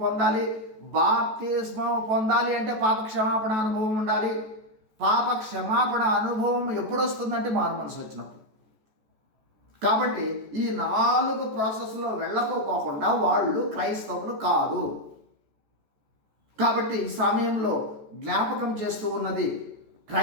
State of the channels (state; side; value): late; left; 14 ms